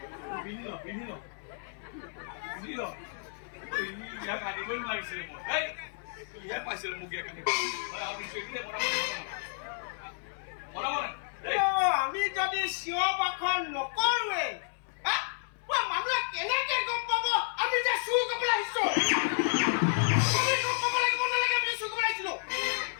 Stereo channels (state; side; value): silent; right; 57 dB below the other